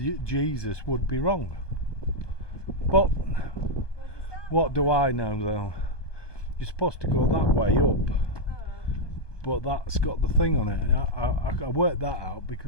Jesus would be wrong. But what do I know though? You're supposed to go that way up, but that's got the thing on it. I worked that out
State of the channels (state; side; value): late; right; 1.2 ms